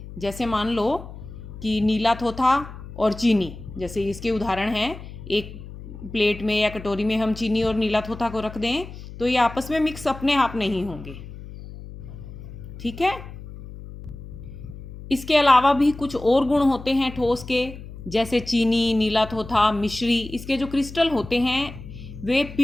जैसे मान लो कि नीला थोथा और चीनी, जैसे इसके उदाहरण हैं। एक प्लेट में या कटोरी में हम चीनी और नीला थोथा को रख दें तो ये आपस में मिक्स अपने आप नहीं होंगे, ठीक है। इसके अलावा भी कुछ और गुण होते हैं ठोस के, जैसे चीनी, नीला थोथा, मिश्री। इसके जो क्रिस्टल होते हैं वे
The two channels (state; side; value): noise; left; hum, 13 dB below the sound